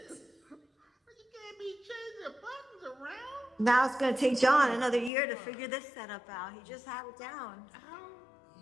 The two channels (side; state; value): right; drops out; at 5.1 s